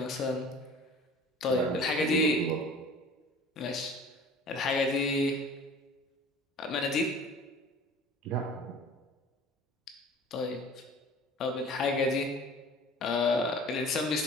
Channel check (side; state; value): both; normal; correlation 0.44